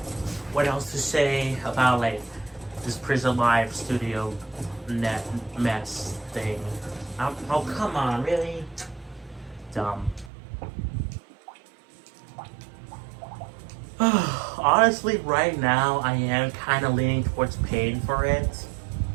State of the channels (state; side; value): drops out; left; at 10.3 s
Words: what else to say about like this Prism Live Studio net mess thing. Oh come on, really? Dumb. Honestly, right now I am kind of leaning towards paying for it.